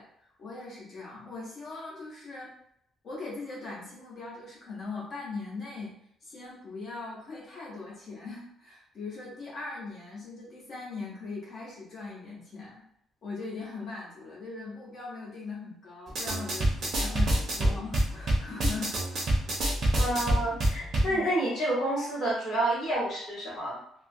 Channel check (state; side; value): normal; both; correlation 0.79